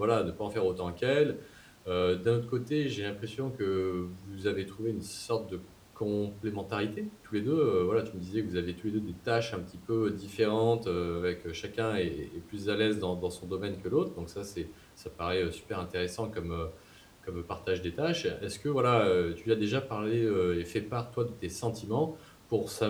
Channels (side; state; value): both; identical; correlation 1.00